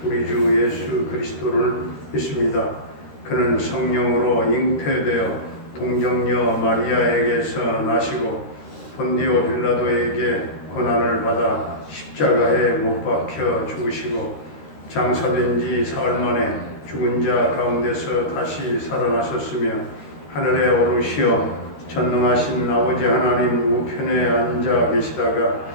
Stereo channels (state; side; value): late; right; 13 ms